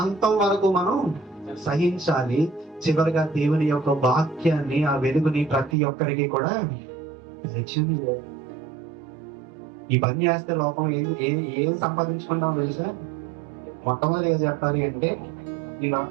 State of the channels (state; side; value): drops out; left; at 5.8 s